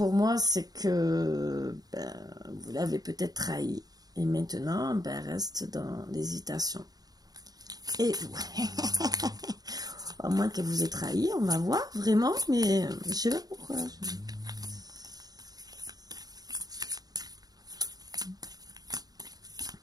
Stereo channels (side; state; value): left; late; 0.19 ms